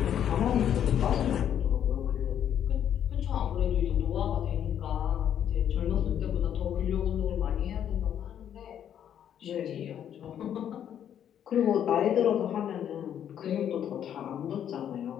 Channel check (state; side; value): quieter; right; 9.6 dB